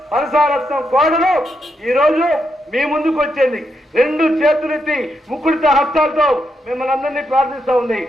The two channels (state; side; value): normal; both; correlation 0.81